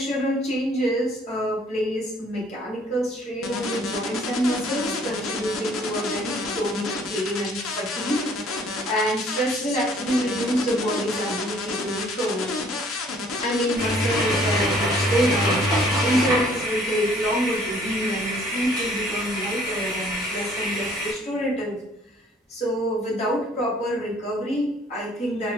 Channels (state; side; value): normal; both; correlation 0.58